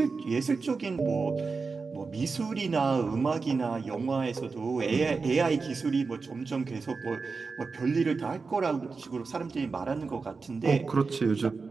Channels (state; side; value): quieter; left; 4.5 dB